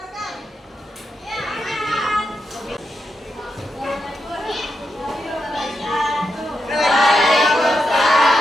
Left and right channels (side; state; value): both; normal; correlation 0.85